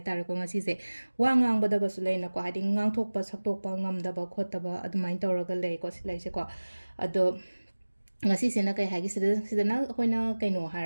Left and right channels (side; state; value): both; inverted; correlation -1.00